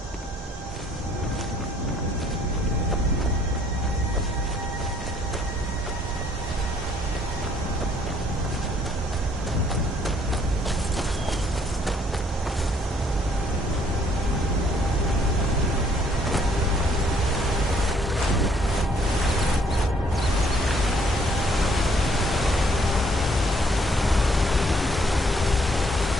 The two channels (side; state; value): both; normal; correlation 0.64